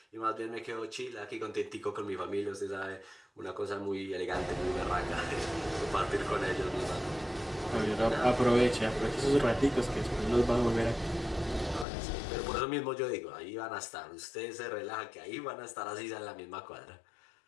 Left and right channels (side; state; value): right; drops out; at 11.9 s